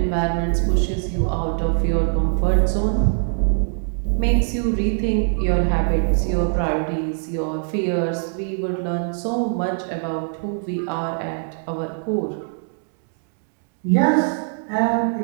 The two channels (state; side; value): silent; left; 63 dB below the other